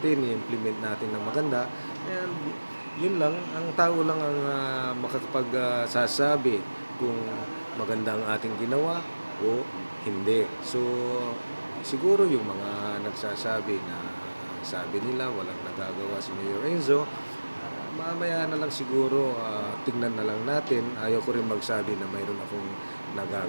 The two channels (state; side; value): inverted; both; correlation -1.00